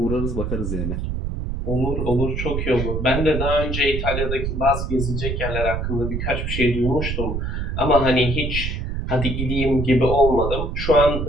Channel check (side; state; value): right; noise; rumble, 2 dB below the sound